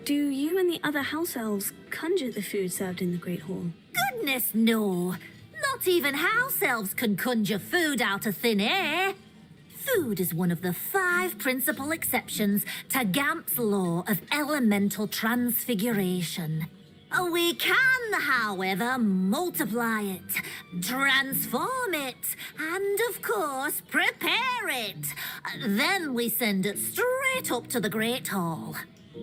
Do you and the other house elves conjure the food served in the Great Hall? Goodness, no. Not even house elves can conjure food out of thin air. Food is one of the 5 principal exceptions to Gamp's law of elemental transfiguration. We can, however, multiply it, transform it, and, of course, prepare it. Then we send it straight up to the Great Hall.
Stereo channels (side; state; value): both; identical; correlation 1.00